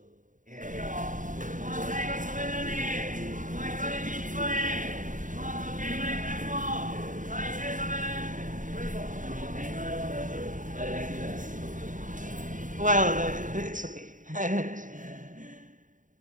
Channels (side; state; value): left; late; 0.38 ms